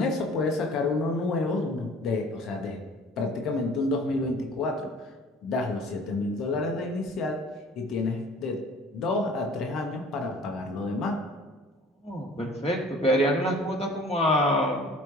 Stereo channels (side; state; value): both; normal; correlation 0.49